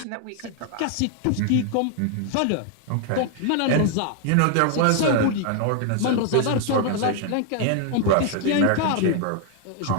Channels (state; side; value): different; both; correlation 0.00